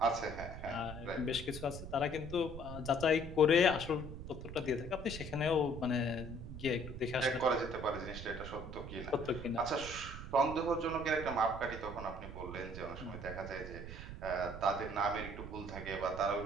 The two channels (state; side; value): noise; right; rumble, 10 dB below the sound